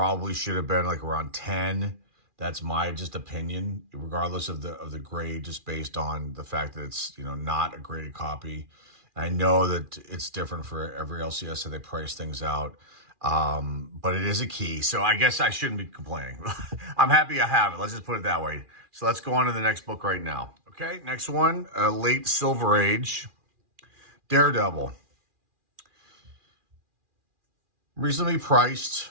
should have been like around 10. That's my just opinion, regardless of the grade, just based on the fact that it's, you know, not a graded copy. I know that it's different for every LCS, so they price things out. But it is a key, so I guess I shouldn't be complaining. I'm happy I have it. Let's just put it that way. So let's go on to the next book right now. Okay, next one, late Silver Age, Daredevil. Reasonably priced,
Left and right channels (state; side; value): late; left; 2.4 ms